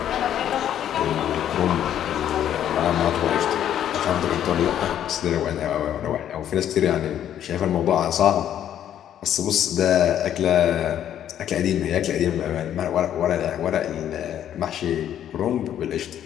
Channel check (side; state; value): right; quieter; 10.5 dB